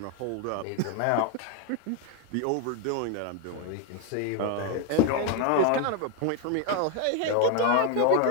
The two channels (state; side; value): different; both; correlation 0.01